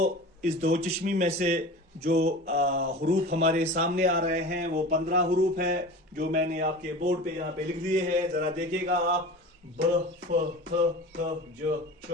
इस दो चश्मी में से जो हुरूफ हमारे सामने आ रहे हैं वो 15 हुरूफ है, जो मैंने आपके बोर्ड पे यहाँ पे लिख दिए हैं। जरा देखिएगा आप। ब, फ, थ, ज, च,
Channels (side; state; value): both; normal; correlation 0.35